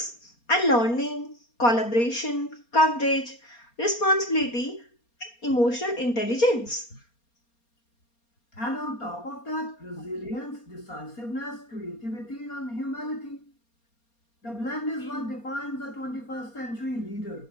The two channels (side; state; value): right; late; 4.3 ms